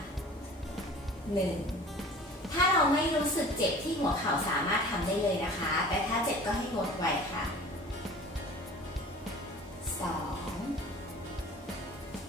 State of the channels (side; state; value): both; normal; correlation 0.44